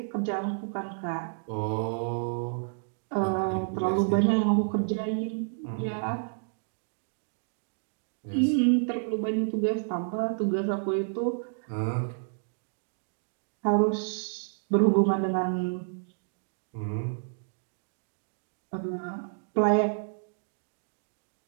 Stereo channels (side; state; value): left; silent; digital silence